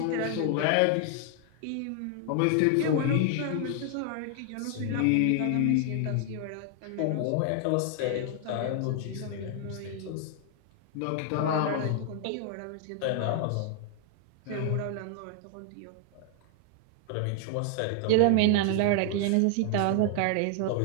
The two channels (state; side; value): different; both; correlation 0.00